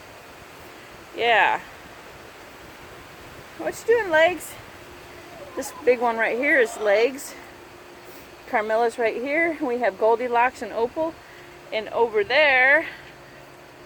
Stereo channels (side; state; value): both; identical; correlation 1.00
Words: Yeah. What you doing, Legs? This big one right here is Legs. Carmilla's right here. We have Goldilocks and Opal. And over there,